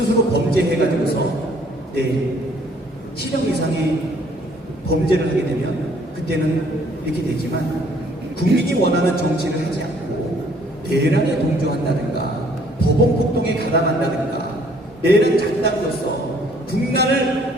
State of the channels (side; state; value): both; normal; correlation 0.61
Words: 범죄해가지고서 실형 이상의 범죄를 하게 되면 그때는 이렇게 되지만 국민이 원하는 정치를 하지 않고 대란에 동조한다든가 법원 폭동에 가담한다든가 내란 작당으로서